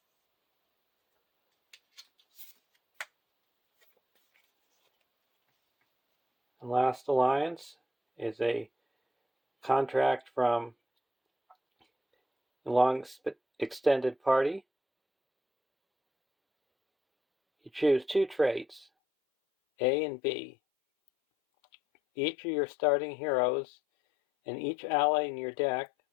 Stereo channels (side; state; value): right; drops out; at 18.9 s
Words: And Last Alliance is a contract from a long extended party. You choose two traits, A and B. Each of your starting heroes and each ally in your deck